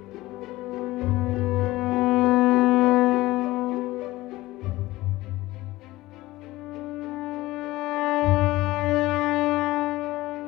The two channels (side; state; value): right; quieter; 18.3 dB